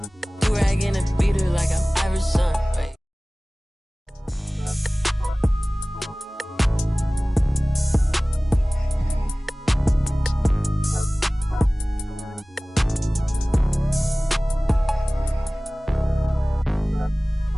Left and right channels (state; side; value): normal; both; correlation 0.98